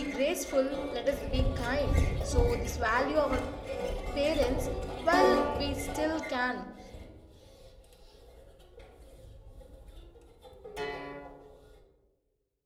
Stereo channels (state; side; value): identical; both; correlation 1.00